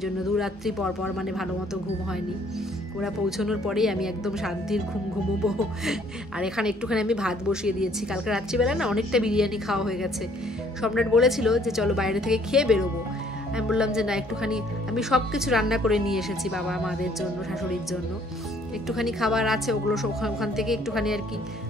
জন্য 2 রাত্রি পর মানে ভালো মতো ঘুম হয়নি। ওরা পৌঁছানোর পরেই আমি একদম শান্তির ঘুমোবো। আর এখানে একটুখানি আমি ভাত বসিয়ে দিয়েছি। কালকে রাত্রিবেলা না অনেকটা বিরিয়ানি খাওয়া হয়ে গেছে। সম্রাট বলেছিল যে চলো বাইরে থেকে খেয়ে বেরোবো। আমি বললাম যে না, একটুখানি আমি সব কিছু রান্না করে নিয়ে এসেছি বাবা মাদের জন্য, শাশুড়ির জন্য। একটুখানি খাবার আছে, ওগুলো ওখান থেকে একটুখানি আর কি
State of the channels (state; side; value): normal; both; correlation 0.62